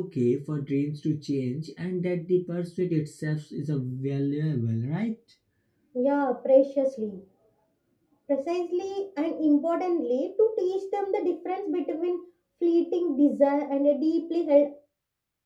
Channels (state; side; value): identical; both; correlation 1.00